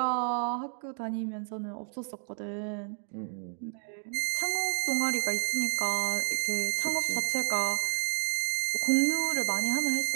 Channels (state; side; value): silent; left; 58 dB below the other